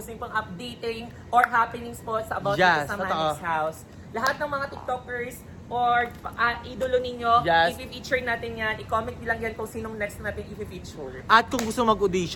niyo pong updating or happenings po sa about Yes, dito sa totoo. Manix House. Lahat ng mga TikTokers or idolo ninyo, Yes. i-feature natin yan. I-comment nyo lang yan kung sinong next natin i-feature. At kung gusto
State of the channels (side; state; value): both; identical; correlation 1.00